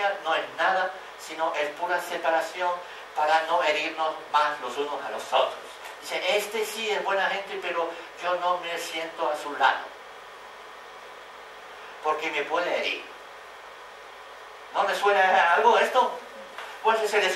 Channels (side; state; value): both; identical; correlation 1.00